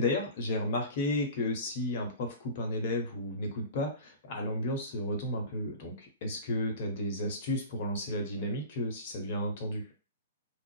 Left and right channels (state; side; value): inverted; both; correlation -0.37